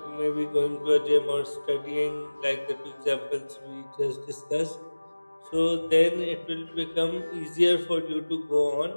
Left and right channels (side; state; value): both; inverted; correlation -1.00